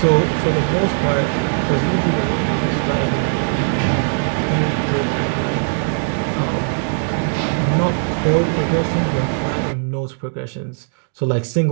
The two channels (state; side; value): silent; left; 66 dB below the other